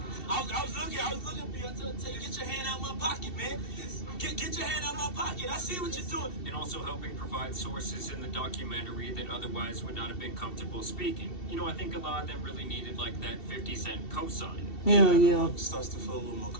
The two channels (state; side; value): late; right; 2.7 ms